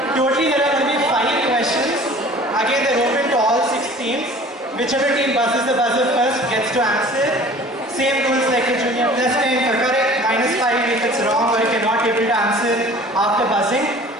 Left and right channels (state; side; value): normal; both; correlation 0.46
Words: Totally there are going to be 5 questions. Again they're open to all 6 teams. Whichever team buzzes the buzzer first gets to answer. Same rules like the junior. +10 for correct, -5 if it's wrong or if you're not able to answer after buzzing.